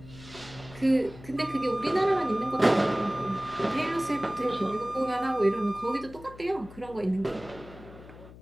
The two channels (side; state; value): left; noise; hum, 18 dB below the sound